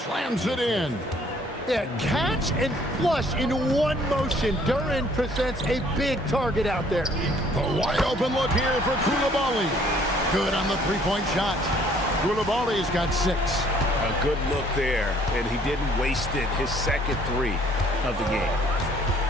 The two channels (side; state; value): both; normal; correlation 0.60